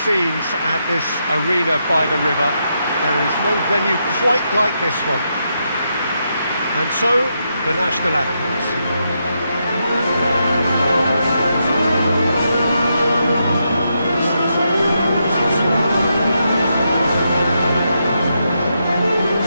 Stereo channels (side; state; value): both; inverted; correlation -0.82